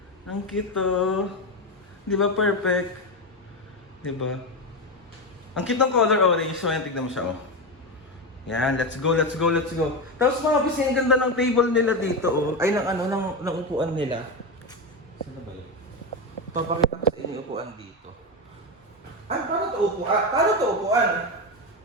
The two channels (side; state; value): both; normal; correlation 0.14